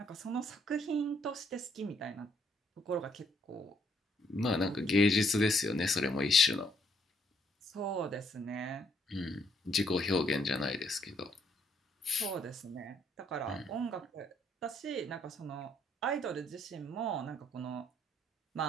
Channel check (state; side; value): normal; both; correlation 0.69